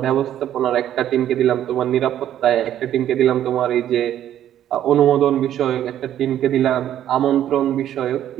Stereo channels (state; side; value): quieter; left; 11.3 dB